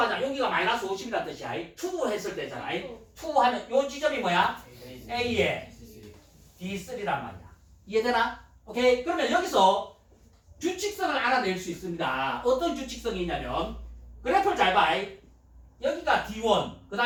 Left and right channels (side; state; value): both; identical; correlation 1.00